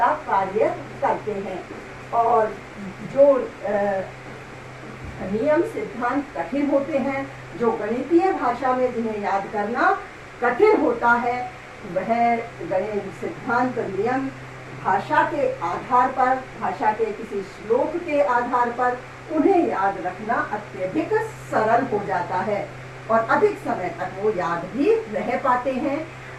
कार्य करते हैं। और जो नियम, सिद्धांत कठिन होते हैं, जो गणितीय भाषा में जिन्हें याद करना कठिन होता है, वह गणित सिद्धांत, नियम भाषा के आधार पर, भाषा के किसी श्लोक के आधार पर उन्हें याद रखना अत्यधिक सरल हो जाता है और अधिक समय तक वो याद भी रह पाते हैं।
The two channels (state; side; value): identical; both; correlation 1.00